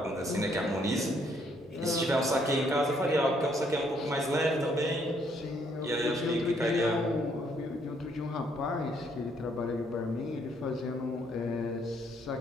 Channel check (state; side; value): normal; both; correlation 0.69